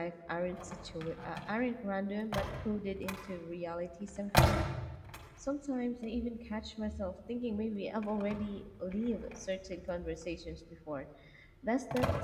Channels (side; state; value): both; identical; correlation 1.00